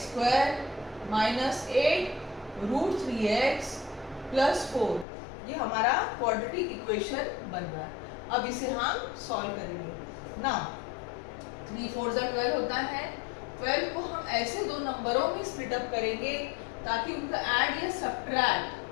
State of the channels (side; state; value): right; drops out; at 5.1 s